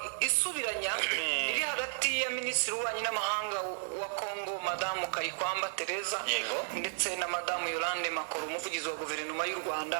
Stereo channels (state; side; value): silent; left; 56 dB below the other